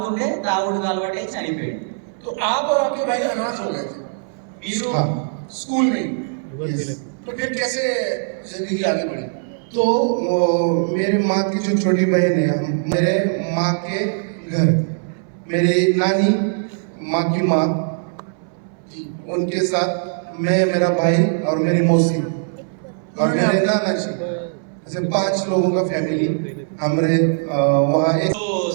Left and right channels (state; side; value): silent; left; 61 dB below the other